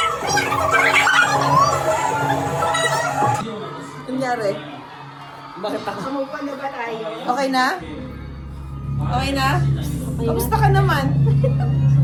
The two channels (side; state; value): both; identical; correlation 1.00